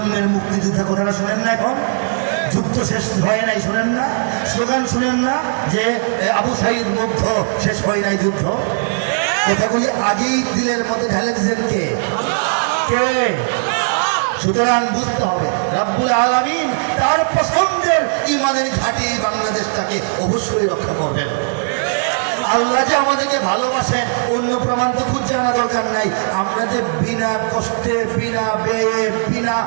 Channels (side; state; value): left; silent; digital silence